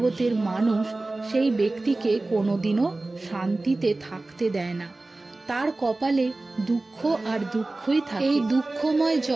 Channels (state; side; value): quieter; left; 3.0 dB